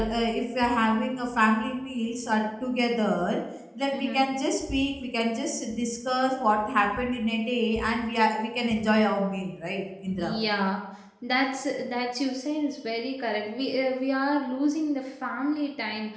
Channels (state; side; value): identical; both; correlation 1.00